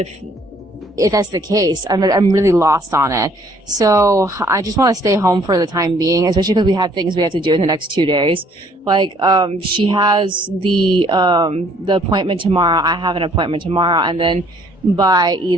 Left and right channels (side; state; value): both; normal; correlation 0.61